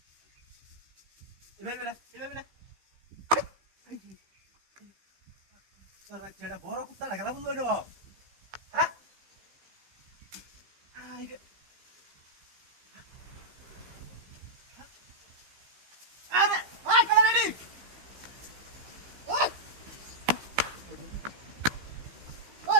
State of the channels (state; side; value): late; left; 15 ms